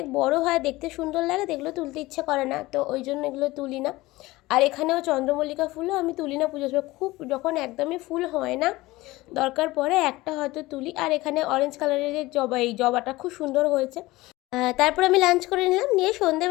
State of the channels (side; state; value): right; quieter; 19.5 dB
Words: বড় হয়, দেখতে সুন্দর লাগে, এগুলো তুলতে ইচ্ছে করে না, তো ওই জন্য এগুলো তুলি না। আর এখানেও চন্দ্রমল্লিকা ফুলও আমি তুলি না পুজোর সময়, খুব যখন একদমই ফুল হয় না, দরকার পড়ে একটা হয়তো তুলি। আর এখানে অরেঞ্জ কালারের যে জবা, এই জবাটা খুব সুন্দর হয়েছে। তারপর আমি লাঞ্চ করে নিলাম, নিয়ে